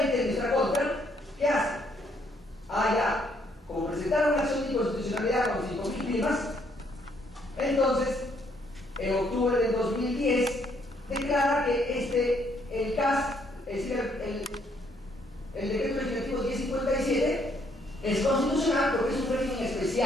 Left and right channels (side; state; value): both; normal; correlation 0.69